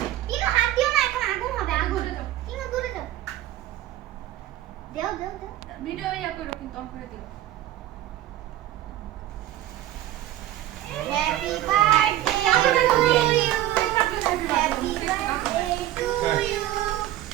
কিনো হাত দিও না এখন আগুন হবে আগুন দূরে যাও। কিনো দূরে যাও দেও দেও দেও ভিডিও ইয়া করো কিন্তু অন করে দিও happy birthday to you happy birthday to you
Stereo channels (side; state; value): left; quieter; 13.7 dB